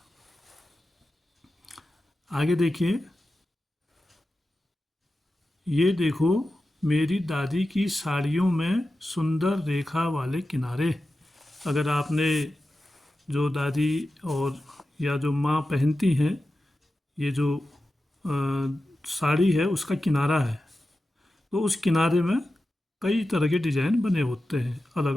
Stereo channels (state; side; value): normal; both; correlation 0.93